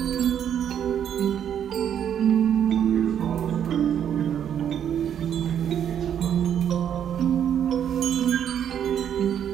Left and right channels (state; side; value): quieter; left; 9.2 dB